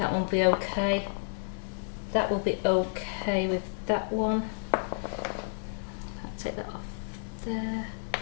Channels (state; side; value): silent; right; digital silence